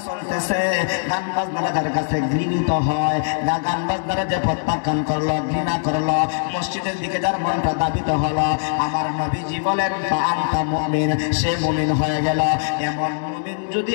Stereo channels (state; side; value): silent; right; 65 dB below the other